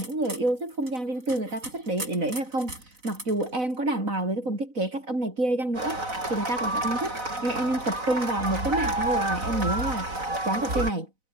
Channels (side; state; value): left; late; 4.0 ms